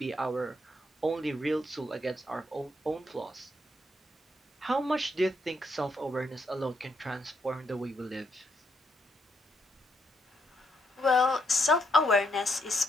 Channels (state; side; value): normal; both; correlation 0.77